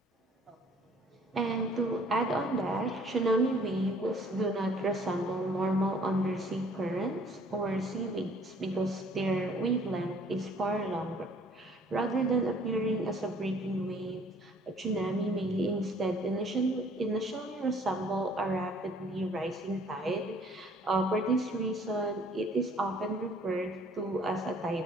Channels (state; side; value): normal; both; correlation 0.57